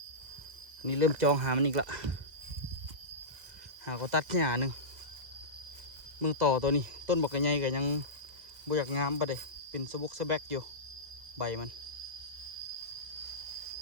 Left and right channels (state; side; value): late; left; 1.6 ms